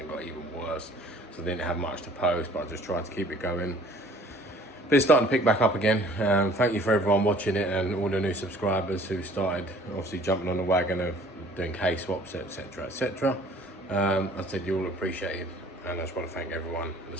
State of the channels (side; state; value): both; normal; correlation 0.53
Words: got even worse. So I didn't have much to post, but I just tried to keep it going. But it's starting to pick back up again. Thank you for everyone watching it and all the new subscribers who started obviously jumping on the wagon of doing case swaps, etc, etc. I said you all appreciate it, and I just want to thank everyone at the